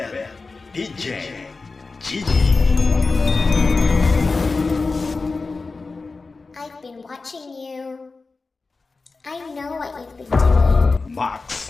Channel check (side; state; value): right; quieter; 4.0 dB